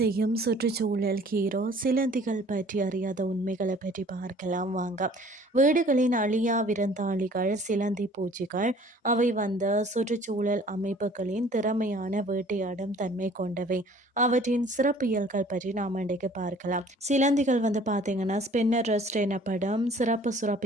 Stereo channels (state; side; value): normal; both; correlation 0.52